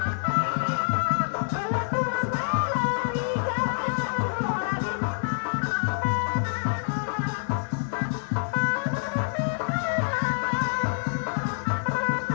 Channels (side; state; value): right; silent; digital silence